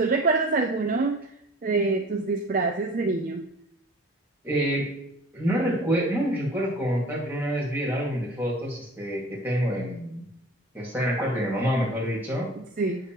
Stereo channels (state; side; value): normal; both; correlation 0.44